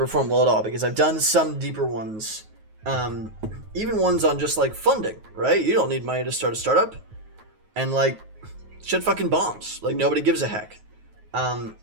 well at all, because I've done some deeper ones. Even ones on just like funding, right? You don't need money to start a startup, and like shit fucking bombs. Like nobody gives a heck.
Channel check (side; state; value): left; late; 9.3 ms